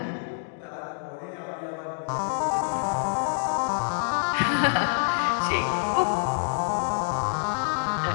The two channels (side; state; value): right; silent; digital silence